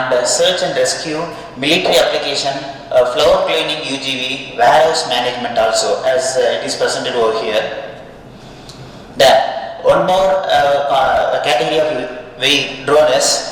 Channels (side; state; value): both; identical; correlation 1.00